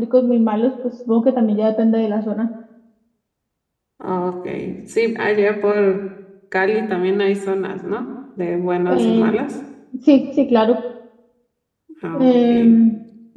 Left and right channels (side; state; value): both; identical; correlation 1.00